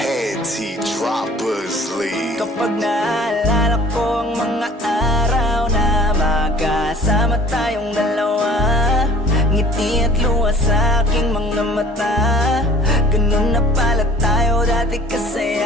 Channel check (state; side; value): normal; both; correlation 0.50